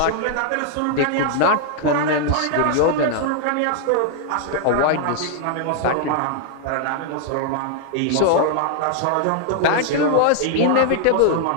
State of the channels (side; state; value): both; different; correlation -0.01